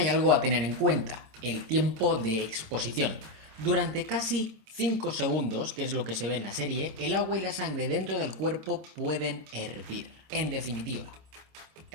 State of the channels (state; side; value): late; left; 26 ms